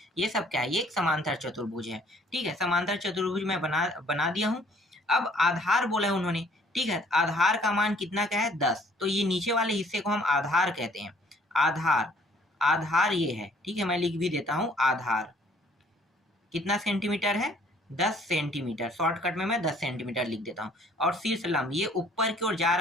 ये सब क्या है, ये एक समांतर चतुर्भुज है। ठीक है, समांतर चतुर्भुज मैं बना दिया हूँ। अब आधार बोला है उन्होंने। ठीक है, आधार का मान कितना का है, 10। तो ये नीचे वाले हिस्से को हम आधार कहते हैं। आधार, आधार ये है। ठीक है, मैं लिख भी देता हूँ, आधार कितना सेंटीमीटर है, 10 सेंटीमीटर। शॉर्टकट में मैं 10 सेंटीमीटर लिख देता हूँ। और शीर्ष लंब ये ऊपर की ओर जा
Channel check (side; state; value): both; normal; correlation 0.60